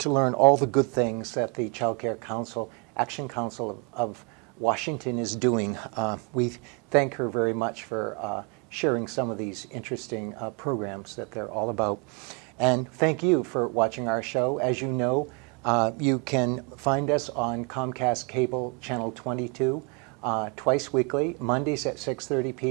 to learn all the good things that the Child Care Council, Action Council of Washington is doing. We thank her very much for sharing some of these interesting programs that they're all about. And thank you for watching our show. As you know, you can find us on Comcast Cable Channel 22 twice weekly, Mondays at 6:30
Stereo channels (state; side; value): quieter; left; 33.8 dB